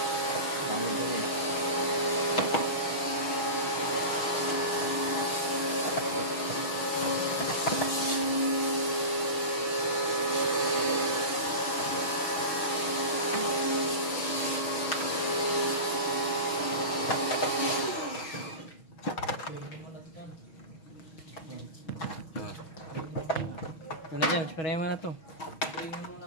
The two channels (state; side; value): late; right; 6.3 ms